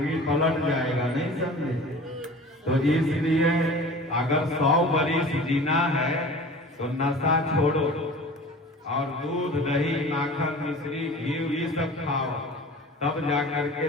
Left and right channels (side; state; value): both; normal; correlation 0.40